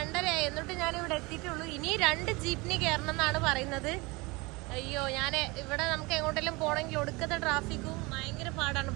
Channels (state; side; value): quieter; left; 24.9 dB